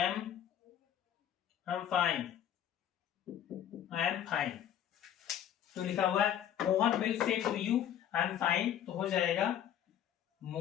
fine, I am fine, तो लिखा हुआ है Mohan will say to you I am fine, तो हो जाएगा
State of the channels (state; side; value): quieter; right; 10.3 dB